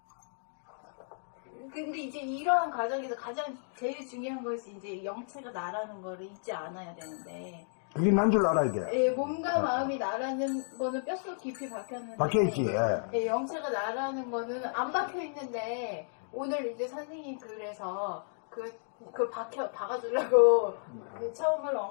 근데 이제 이러한 과정에서 가장 제일 중요한 것이 이제 영체가 나라는 거를 잊지 않아야 되는데 그게 난 줄 알아야 돼. 몸과 마음이 나라는 거는 뼛속 깊이 박혔는데 박혀있지. 영체가 나라는 거는 안 박혀있는데 오늘 이제 선생님 글에서 그걸 박아주려고 처음을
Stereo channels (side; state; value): right; silent; digital silence